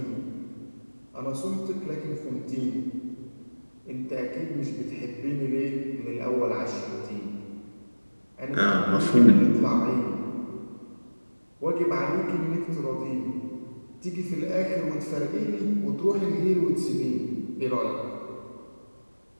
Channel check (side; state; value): both; inverted; correlation -1.00